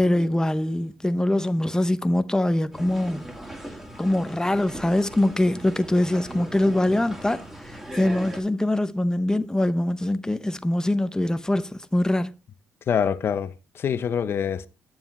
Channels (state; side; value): normal; both; correlation 0.95